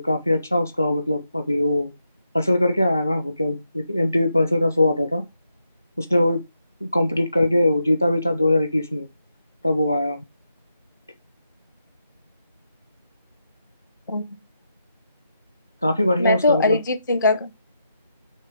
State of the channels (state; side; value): inverted; both; correlation -0.84